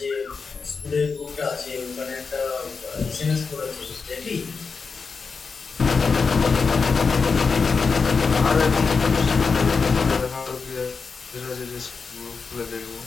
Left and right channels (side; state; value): right; quieter; 5.0 dB